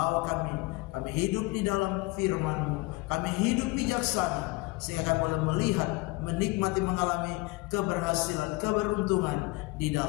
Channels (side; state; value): right; quieter; 23.1 dB